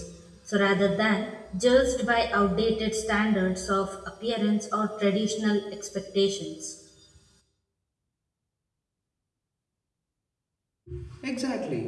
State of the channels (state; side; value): identical; both; correlation 1.00